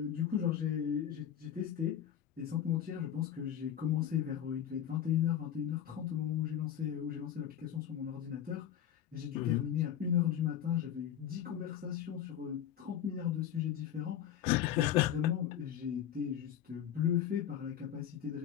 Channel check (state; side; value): quieter; right; 10.1 dB